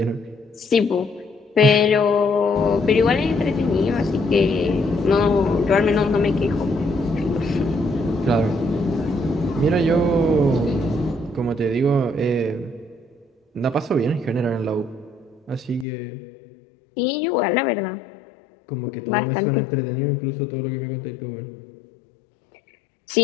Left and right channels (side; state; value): right; drops out; at 15.9 s